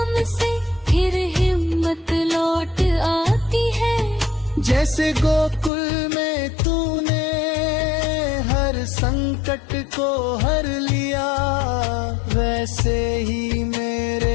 से फिर हिम्मत लौट आती है। जैसे गोकुल में तूने हर संकट को हर लिया, वैसे ही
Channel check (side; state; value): right; drops out; at 5.7 s